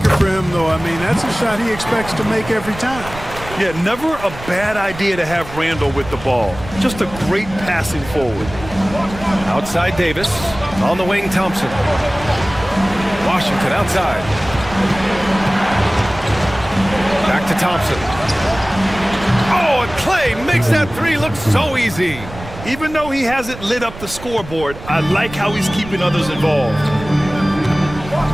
for him, though. I mean, that's a shot he expects to make every time. Yeah, never a bad idea to have Randall with the ball. Just a great passing forward. Outside Davis. On the wing, Thompson. Washington outside. Back to Thompson. Oh, and Clay makes that three look so easy. Even though he hasn't lit up the scoreboard, I like how he's keeping others involved.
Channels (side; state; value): right; noise; rumble, 14 dB below the sound